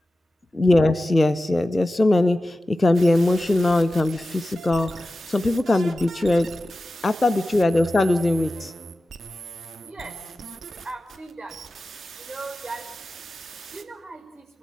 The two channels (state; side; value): normal; both; correlation 0.94